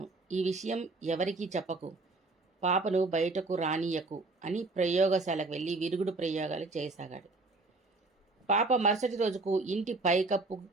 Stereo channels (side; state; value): left; quieter; 3.4 dB